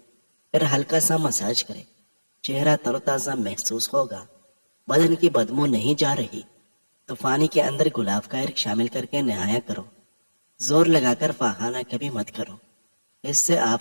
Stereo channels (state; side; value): inverted; both; correlation -1.00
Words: پھر ہلکا سا مساج کرے. چہرہ تر و تازہ محسوس ہوگا. بدن کی بدبو نہیں جا رہی تو پانی کے اندر گلاب کا عرق شامل کر کے نہایا کرو. زور لگا کر پخانہ کبھی مت کرو، اس سے